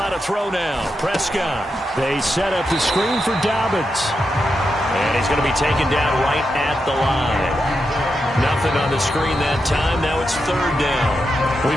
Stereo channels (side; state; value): both; normal; correlation 0.86